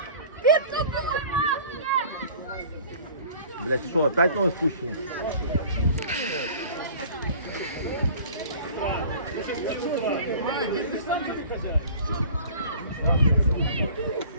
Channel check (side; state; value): both; inverted; correlation -0.46